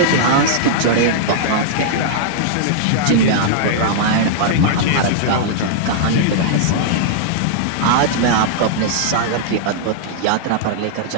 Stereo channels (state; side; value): different; both; correlation -0.01